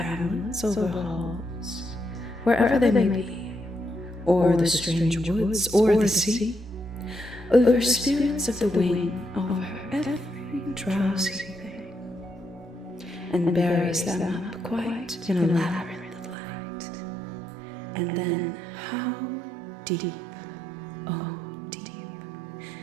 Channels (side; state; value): left; drops out; at 16.4 s